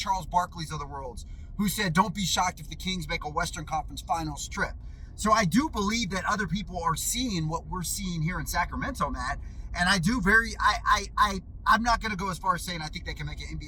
Barkley's of the worlds, who said, don't be shocked if the Kings make a Western Conference Finals trip. So I do believe that other people are seeing what we're seeing here in Sacramento, Matt. And I do I'm not going to go as far as saying I think they can make an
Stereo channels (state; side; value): identical; both; correlation 1.00